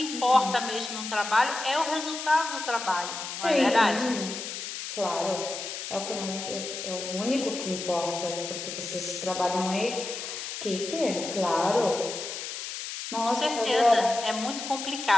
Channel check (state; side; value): noise; left; hiss, 7 dB below the sound